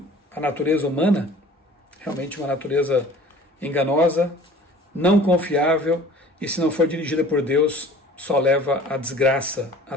a natureza humana? Realmente uma natureza enganosa, não confiável, e se não for dirigida por Deus, só leva à desgraça,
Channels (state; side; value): normal; both; correlation 0.47